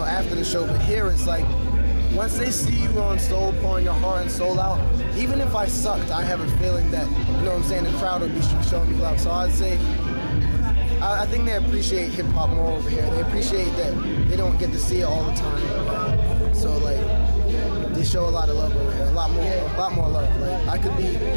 after the show. But here it's like, once they see you on soul, pouring your heart and soul out, even if I sucked, I have a feeling that, you know what I'm saying, the crowd will be showing me love. So I'd say, I think they appreciate hip hop more over here. They appreciate that they don't get to see it all the time. So like, they show a lot of love over here, a lot more love. Like I could be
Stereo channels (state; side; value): inverted; both; correlation -1.00